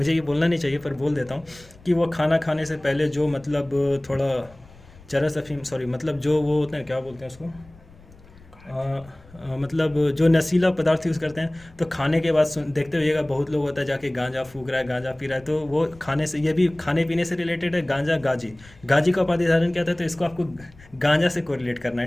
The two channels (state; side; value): noise; left; rumble, 24 dB below the sound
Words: ये बोलना नहीं चाहिए पर बोल देता हूँ, कि वो खाना खाने से पहले जो मतलब थोड़ा चरस अफीम मतलब जो वो होते हैं, क्या बोलते हैं उसको, मतलब जो नशीला पदार्थ यूज़ करते हैं, तो खाने के बाद देखते होइएगा बहुत लोग होता है जाके गांजा फूक रहा है, गांजा पी रहा है। तो वो खाने से, ये भी खाने पीने से रिलेटेड है। गांजा गाजी का उपाधि धारण क्या था? तो इसको आपको गांजा से कोरिलेट करना